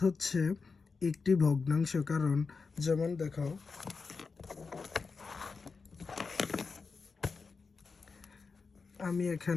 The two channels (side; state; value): right; quieter; 4.7 dB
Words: হচ্ছে একটি ভগ্নাংশ। কারণ যেমন দেখো, আমি